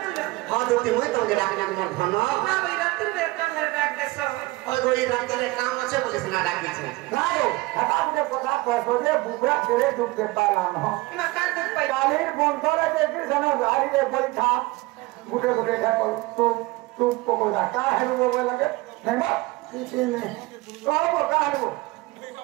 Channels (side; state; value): left; quieter; 21.1 dB